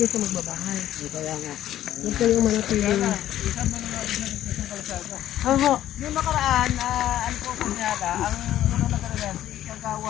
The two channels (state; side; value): quieter; right; 12.5 dB